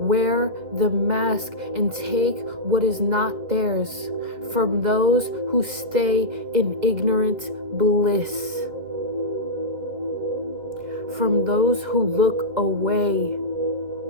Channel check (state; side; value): late; left; 2.4 ms